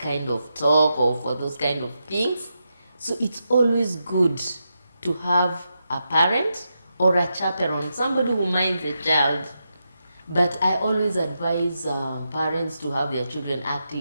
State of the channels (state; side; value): inverted; both; correlation -0.86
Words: of talk or for those kind of things. So it's always good to have a parent or a chaperone, somebody who minds a child. But I always advise parents to have their children